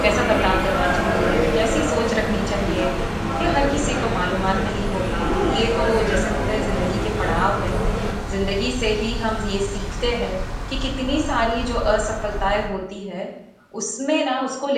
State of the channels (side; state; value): both; identical; correlation 1.00